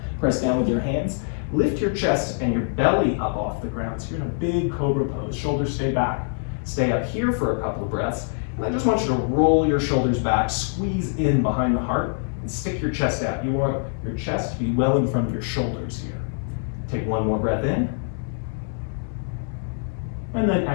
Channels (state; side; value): silent; right; digital silence